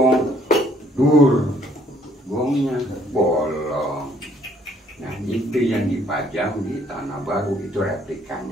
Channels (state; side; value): normal; both; correlation 0.64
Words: gongnya bolong. Nah, itu yang dipajang di Tanah Baru, itu